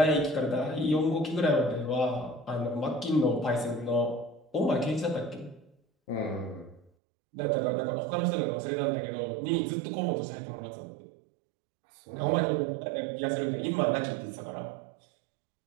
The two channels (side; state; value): left; drops out; at 6.9 s